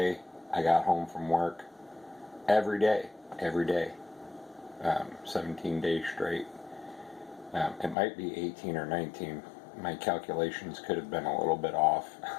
I got home from work every day. 17 days straight. It might be 18 or 19. My calculations could have been a little bit off.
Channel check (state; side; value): drops out; right; at 8.0 s